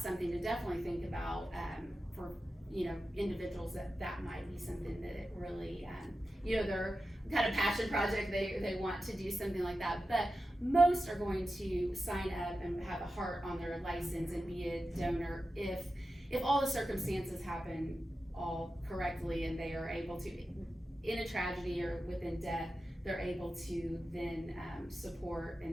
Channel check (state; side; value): normal; both; correlation 0.92